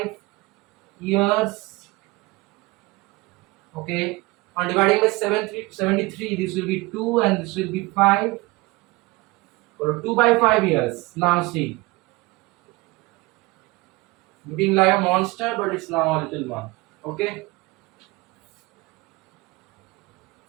years. Okay, on dividing by 73, this will be 2 and this will be 5. So 2 by 5 years. Now see, looking like a monster, but it's now a little one. Okay.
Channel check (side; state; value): left; quieter; 22.7 dB